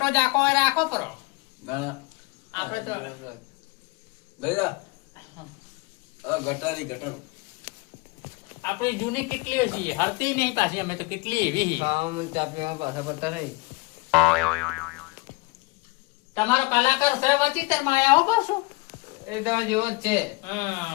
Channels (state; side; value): quieter; right; 25.3 dB